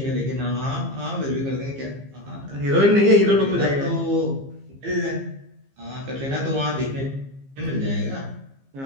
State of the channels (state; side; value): late; left; 15 ms